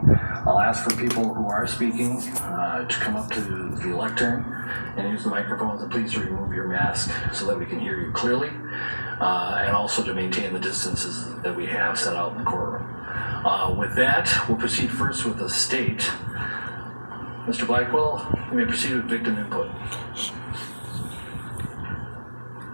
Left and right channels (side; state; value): both; inverted; correlation -1.00